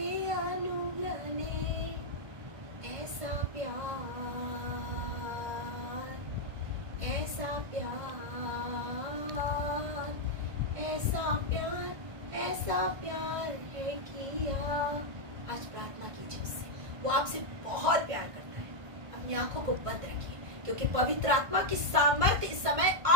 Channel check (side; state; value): left; late; 1.6 ms